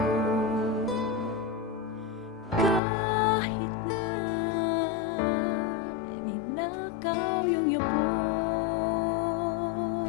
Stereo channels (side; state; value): right; drops out; at 2.8 s